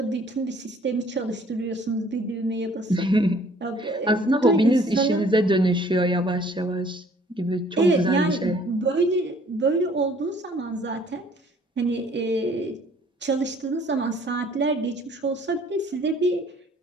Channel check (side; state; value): both; normal; correlation 0.57